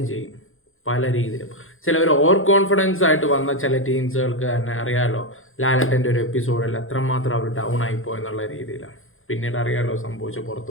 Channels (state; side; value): late; right; 0.60 ms